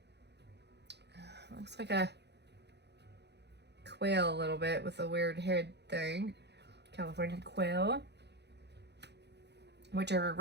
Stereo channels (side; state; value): left; late; 0.49 ms